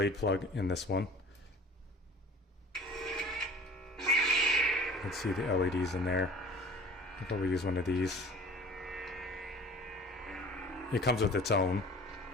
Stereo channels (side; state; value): both; normal; correlation 0.44